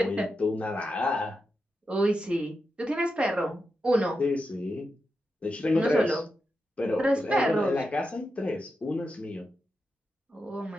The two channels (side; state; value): both; normal; correlation 0.88